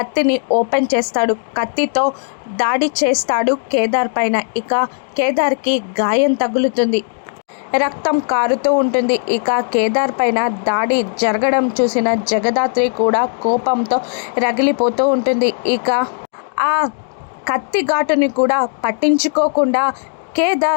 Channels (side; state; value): right; silent; digital silence